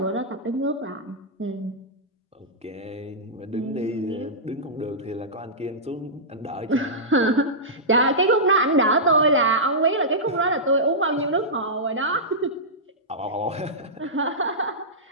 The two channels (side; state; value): both; normal; correlation -0.14